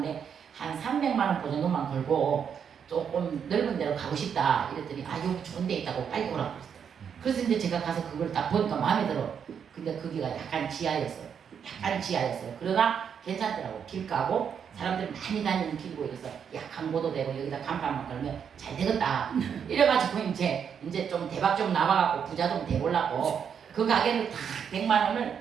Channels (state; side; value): quieter; left; 7.5 dB